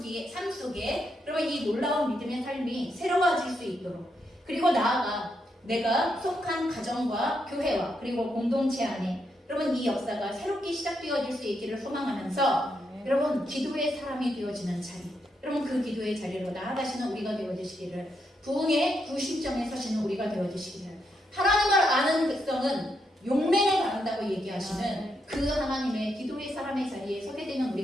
속에 그러면 이 놀라운 믿음의 삶이 새로워질 수 있도록 그리고 나아가 내가 속한 가정과 교회와 그리고 공동체 안에 여러분 이 역사가 새롭게 시작되어질 수 있기를 소망하면서 여러분 기도의 사람이 되어지는 자리 여러분 그 기도의 자리로 나아가시는 우리가 되어주시기를 부흥의 구심점에 서시는 우리가 되어주시기를 하나님을 아는 백성은 용맹을 받는다고 얘기하시는 그 하나님의 기도의 사람의 자리에 서게 되는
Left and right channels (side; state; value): both; normal; correlation 0.80